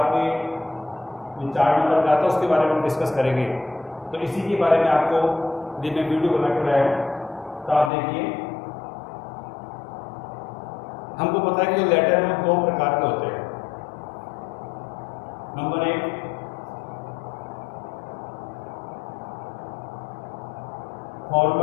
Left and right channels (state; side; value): drops out; right; at 7.9 s